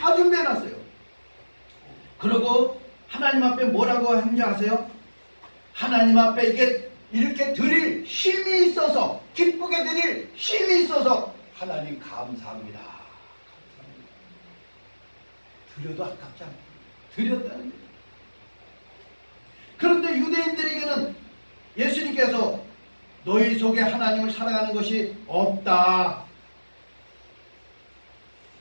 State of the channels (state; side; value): inverted; both; correlation -1.00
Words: 준비해놨어요. 그리고 하나님 앞에 뭐라고 했는지 아세요? 하나님 앞에 이게 이렇게 드릴 힘이 있어서, 기쁘게 드릴 힘이 있어서 하나님 감사합니다. 드려도 아깝지 않아요. 드렸다는 거예요. 그런데 유대인들에게는 예수님께서 너희 속에 하나님을 사랑하는 것이 없다.